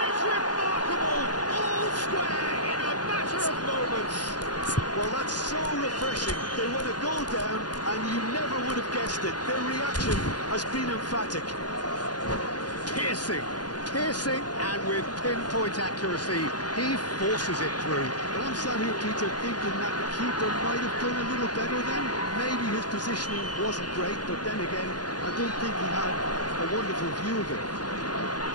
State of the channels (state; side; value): late; right; 0.69 ms